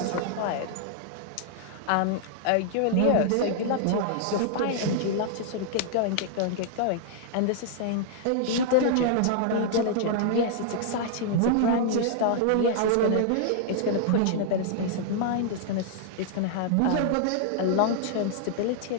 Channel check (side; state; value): both; different; correlation -0.01